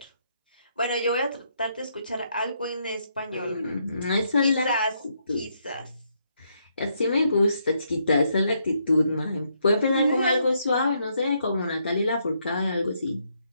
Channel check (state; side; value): inverted; both; correlation -0.75